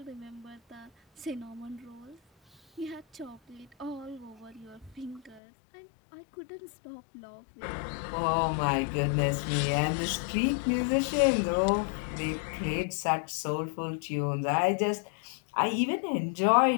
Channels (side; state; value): right; drops out; at 5.4 s